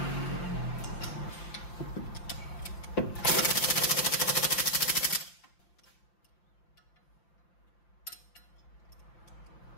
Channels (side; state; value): right; late; 5.8 ms